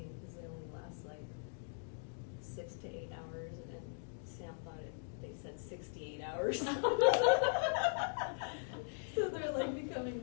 because they only last like 6 to 8 hours, and Sam thought they said 68 hours. So they're like becoming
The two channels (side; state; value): right; silent; digital silence